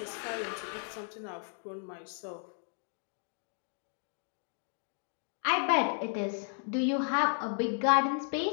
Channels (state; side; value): silent; right; 55 dB below the other